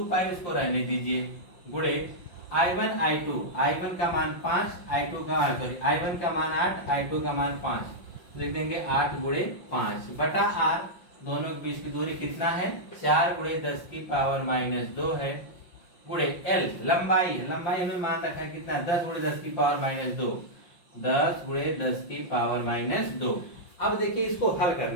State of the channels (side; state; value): right; late; 5.6 ms